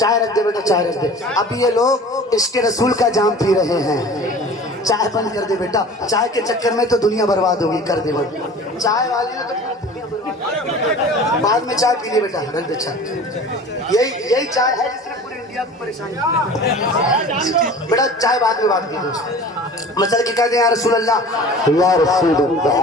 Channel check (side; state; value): both; normal; correlation 0.41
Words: رکھ دے, بیٹا چائے رکھ دے. ابھی یہ لوگ عشق رسول کا جام پی رہے ہیں, چائے بند کر دے بیٹا. چائے کے چکر میں تو دنیا برباد ہوگی, کر دے بند. چائے والے نے تو دنیا برباد, بعد میں چائے پی لے بیٹا, رکھ دے چائے. یہی چائے ہے جس نے پوری انڈیا کو پریشان کیا. بیٹا چائے بعد میں بات کی, مثلا کہ کہہ دیں یا رسول اللہ, یا رسول